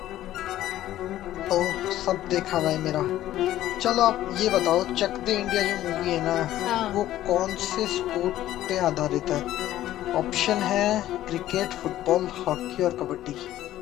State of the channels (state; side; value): quieter; right; 13.7 dB